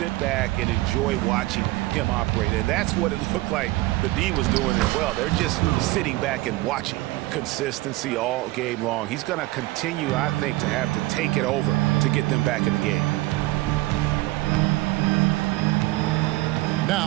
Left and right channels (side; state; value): left; quieter; 19.4 dB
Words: back and enjoy watching him operate. And that's what it looked like the D was doing as well. They're just sitting back and watching. Consistency all game long. He's going to continue, I think, to have to take it over to get them back in the game.